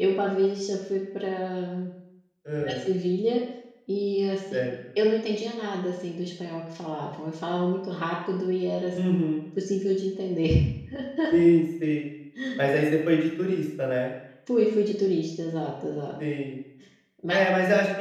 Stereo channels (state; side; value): identical; both; correlation 1.00